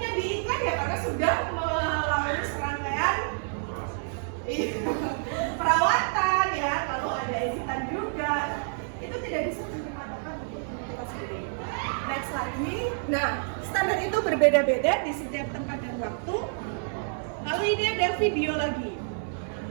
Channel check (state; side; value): silent; left; digital silence